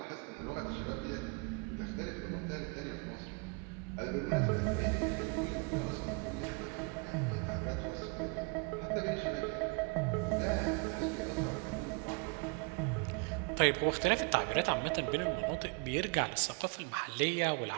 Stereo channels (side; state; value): left; quieter; 33.7 dB